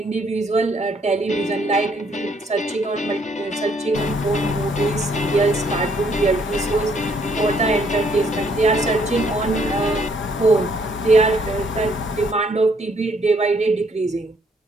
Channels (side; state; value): both; normal; correlation 0.67